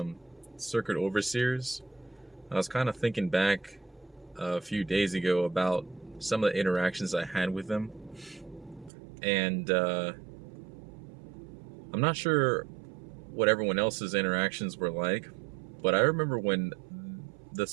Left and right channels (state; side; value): drops out; left; at 8.9 s